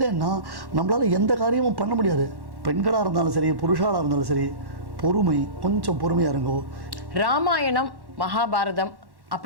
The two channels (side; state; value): left; late; 1.1 ms